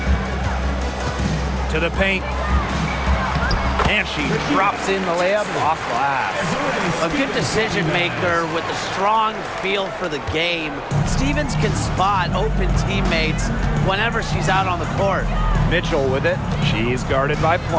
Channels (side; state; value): both; identical; correlation 1.00